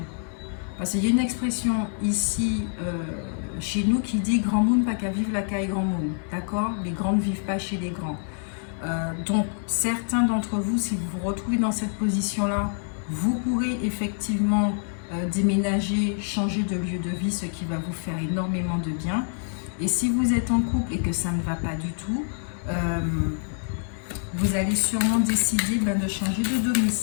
Parce qu'il y a une expression ici, chez nous, qui dit « grand monde, pas qu'à vivre la caille grand monde ». D'accord? Les grands ne vivent pas chez les grands. Donc, certains d'entre vous, si vous vous retrouvez dans cette position-là, vous pourrez effectivement déménager, changer de lieu de vie, ce qui va vous faire énormément de bien. Et si vous êtes en couple et que ça ne va pas du tout, vous allez sûrement décider de changer de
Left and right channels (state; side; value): silent; right; digital silence